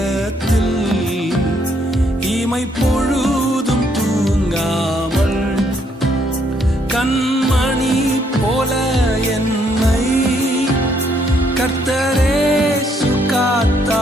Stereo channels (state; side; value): normal; both; correlation 0.71